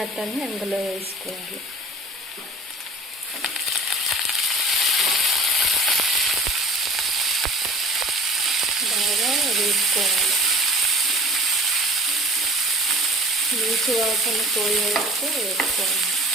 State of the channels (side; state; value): both; normal; correlation 0.44